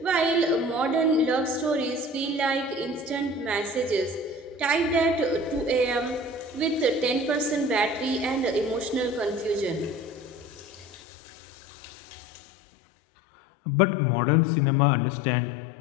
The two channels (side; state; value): right; drops out; at 11.0 s